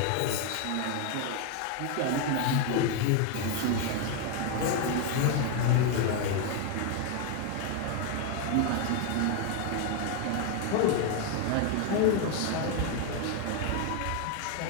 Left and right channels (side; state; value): both; different; correlation 0.01